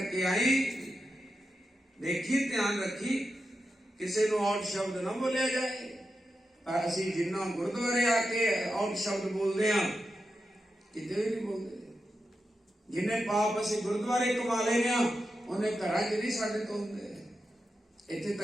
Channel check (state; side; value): normal; both; correlation 0.88